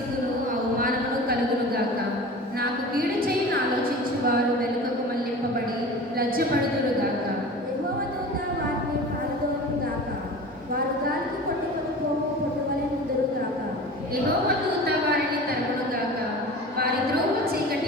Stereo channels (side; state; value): both; normal; correlation 0.36